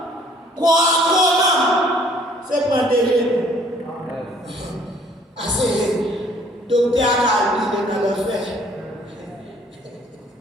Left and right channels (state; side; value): normal; both; correlation 0.59